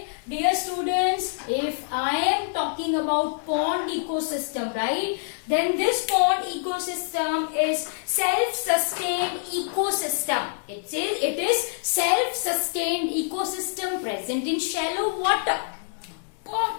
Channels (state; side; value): silent; right; digital silence